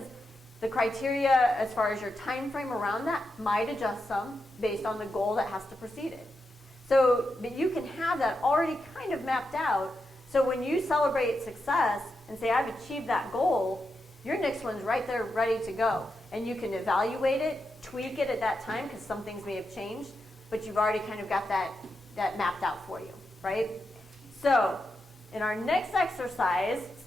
the criteria as far as your time frame around that might adjust some based on the goal that has to precede it. So, but you can have that already kind of mapped out. So when you celebrate success and say, I've achieved that goal, your next one's right there ready to go. And you can evaluate it, tweak it at that time, because some things may have changed, but you've already kind of got that mapped out for you, right? So in our next exercise,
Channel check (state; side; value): normal; both; correlation 0.86